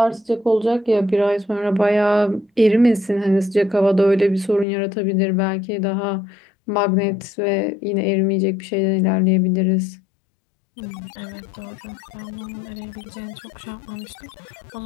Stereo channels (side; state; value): right; drops out; at 4.7 s